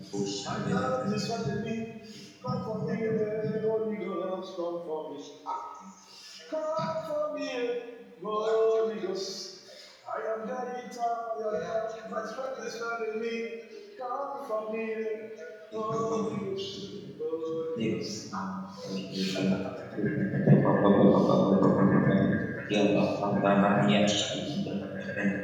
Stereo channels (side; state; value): both; identical; correlation 1.00